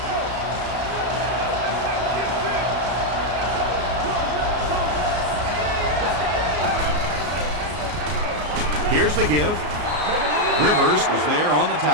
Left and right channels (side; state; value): left; late; 34 ms